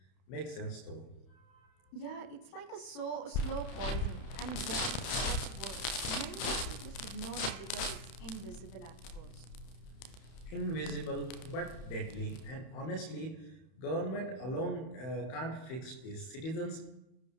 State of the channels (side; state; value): right; late; 32 ms